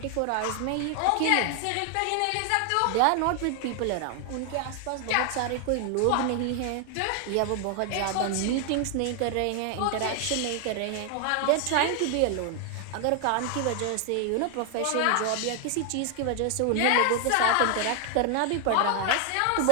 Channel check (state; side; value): different; both; correlation 0.00